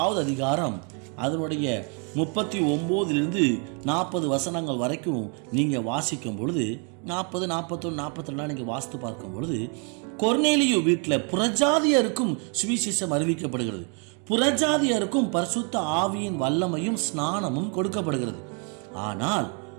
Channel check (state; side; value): quieter; left; 37.8 dB